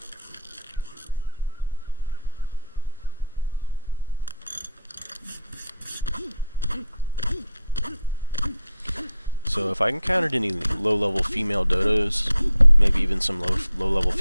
So if I encountered any low-level female dodos, maybe even some low-level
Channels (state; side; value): inverted; both; correlation -0.62